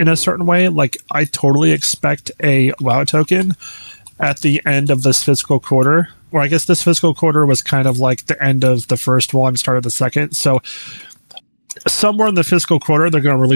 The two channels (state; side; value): inverted; both; correlation -1.00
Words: a certain way. Like, I totally expect a WoW token at the end of this fiscal quarter. Or I guess this fiscal quarter was kind of like the end of the first one, start of the second. So somewhere in the fiscal quarter, they're going to